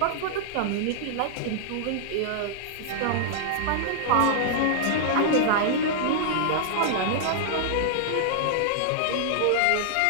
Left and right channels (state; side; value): different; both; correlation -0.01